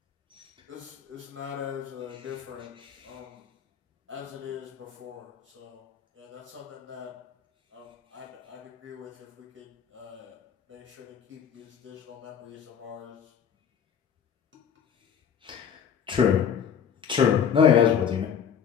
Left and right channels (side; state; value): right; quieter; 8.0 dB